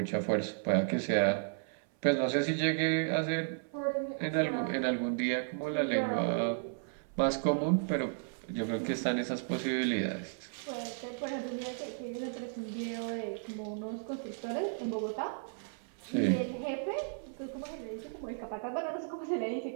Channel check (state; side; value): silent; left; 55 dB below the other